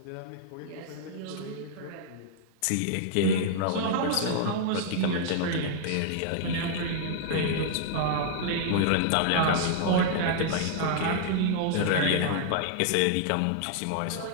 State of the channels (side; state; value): both; different; correlation -0.01